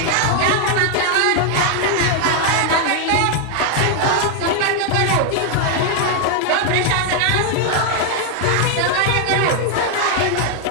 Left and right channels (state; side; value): different; both; correlation 0.00